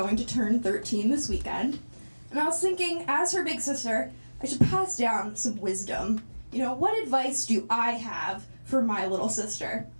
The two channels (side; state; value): both; inverted; correlation -1.00